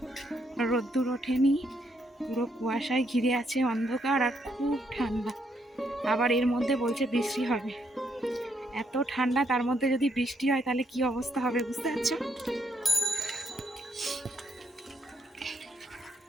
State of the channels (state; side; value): normal; both; correlation 0.75